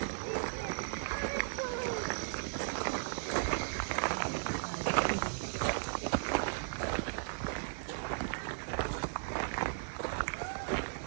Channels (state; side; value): silent; left; digital silence